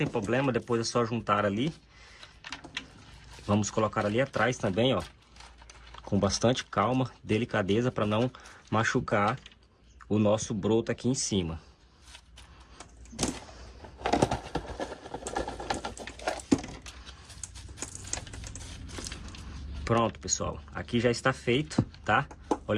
problema, depois é só juntar ali. Vamos colocar ali atrás também, ó. Com bastante calma, delicadeza, para não machucar o nosso broto aqui em cima. Pronto, pessoal. Aqui já está feito, tá?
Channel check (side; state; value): both; identical; correlation 1.00